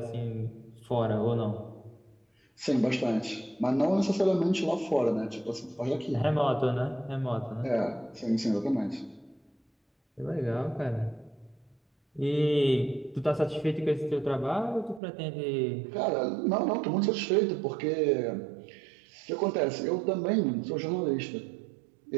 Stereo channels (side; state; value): left; drops out; at 15.0 s